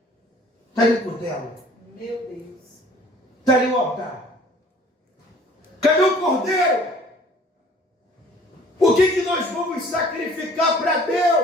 está ali o cutelo? Meu Deus. Está ali o altar? Cadê o cordeiro? O que nós vamos sacrificar para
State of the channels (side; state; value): both; normal; correlation 0.53